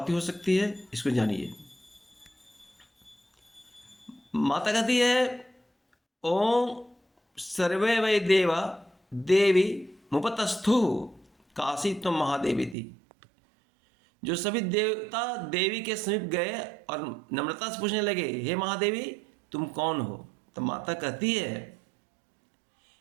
हो सकती है, इसको जानिए। माता कहती है, ओम सर्वे वै देवा देवी मुपतस्थु काशी तुम महादेवी थी। जो सभी देवता देवी के समीप गए और नम्रता से पूछने लगे, हे महादेवी तुम कौन हो, तो माता कहती है,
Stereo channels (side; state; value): left; drops out; at 12.8 s